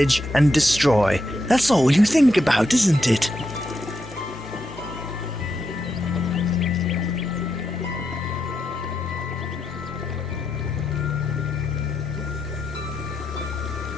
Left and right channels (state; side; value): normal; both; correlation 0.83